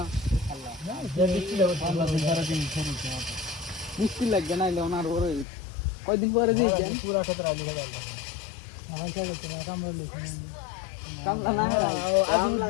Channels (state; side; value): drops out; right; at 5.5 s